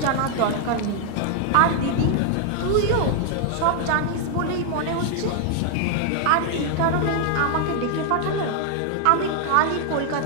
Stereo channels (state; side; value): different; both; correlation 0.00